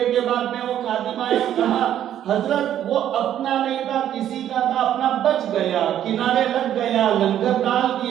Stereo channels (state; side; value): quieter; left; 10.9 dB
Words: کے بعد میں وہ خادم آیا، کہا حضرت وہ اپنا نہیں تھا، کسی کا تھا، اپنا بچ گیا، کنارے لگ گیا، لنگر ڈال